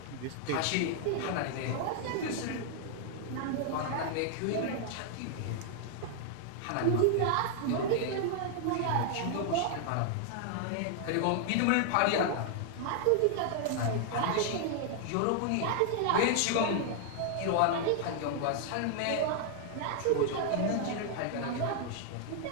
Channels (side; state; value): both; different; correlation 0.00